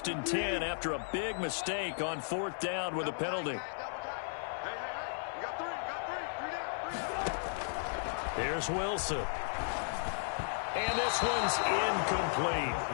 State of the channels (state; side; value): silent; right; 54 dB below the other